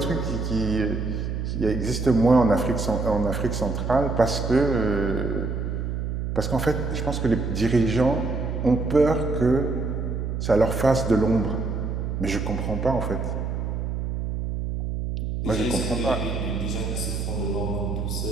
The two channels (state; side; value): noise; right; hum, 3 dB below the sound